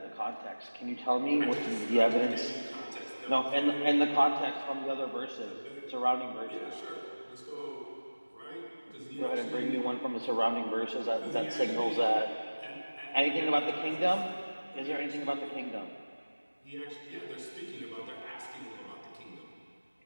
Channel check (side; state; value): both; inverted; correlation -1.00